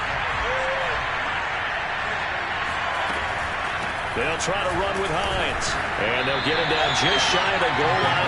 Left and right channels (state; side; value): identical; both; correlation 1.00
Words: They'll try to run with Hines. And they'll get him down just shy of the goal